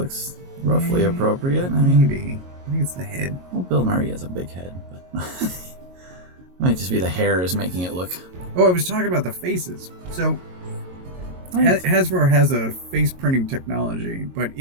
roughly appropriate. Maybe. I think it's the head. Well, Bill Murray has a big head, but it might just be the hair is making it look. Oh, I was talking about the faces. So Hasbro has a face printing technology, but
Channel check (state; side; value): late; left; 22 ms